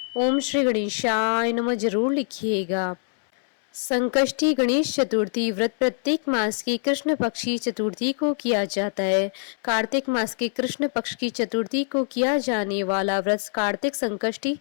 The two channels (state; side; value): silent; right; 62 dB below the other